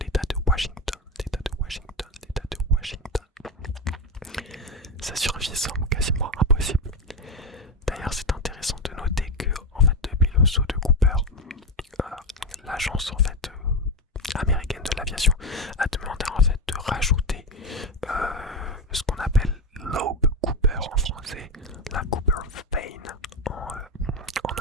de Washington. Sa survie semble quasiment impossible. D'ailleurs, c'est intéressant de noter que, en fait, depuis le saut de Cooper, l'agence en fait américaine de l'aviation a demandé en fait de rajouter ce qu'on appelle Loeb Cooper en français, la Cooper Vane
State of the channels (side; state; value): both; normal; correlation 0.13